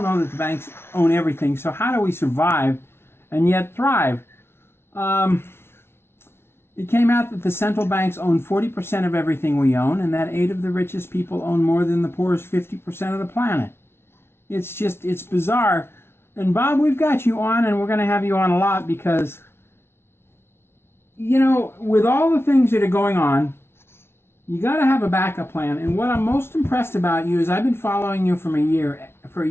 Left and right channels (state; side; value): late; right; 0.12 ms